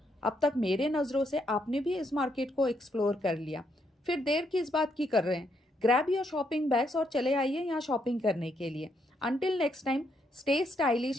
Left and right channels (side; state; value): both; normal; correlation 0.76